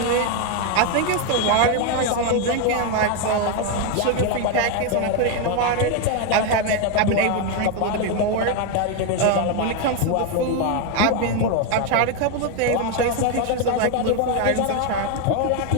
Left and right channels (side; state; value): both; different; correlation 0.01